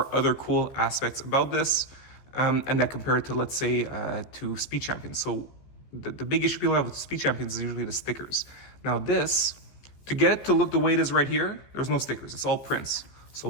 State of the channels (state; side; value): late; right; 14 ms